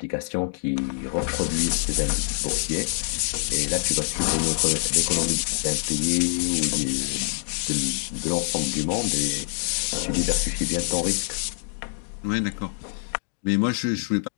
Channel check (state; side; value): silent; right; digital silence